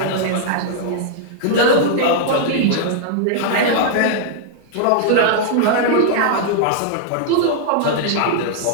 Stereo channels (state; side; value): different; both; correlation 0.00